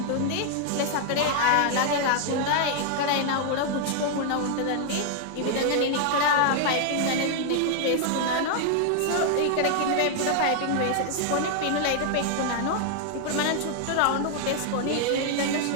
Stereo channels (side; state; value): both; different; correlation 0.00